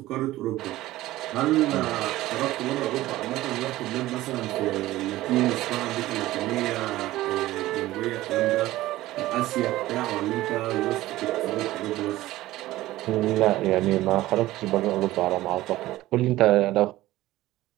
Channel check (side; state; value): left; quieter; 16.4 dB